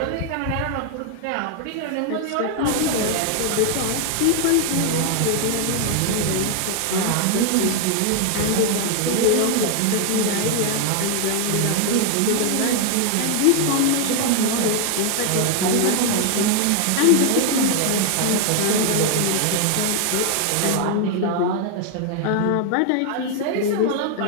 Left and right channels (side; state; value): both; different; correlation 0.00